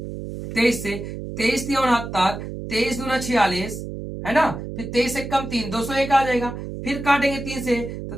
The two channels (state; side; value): noise; right; hum, 8 dB below the sound